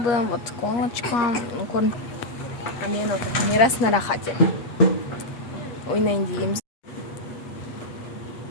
вот колочка. А мен отыр. Мирас на рахате. Ойнайын дейміз.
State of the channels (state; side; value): late; right; 8.5 ms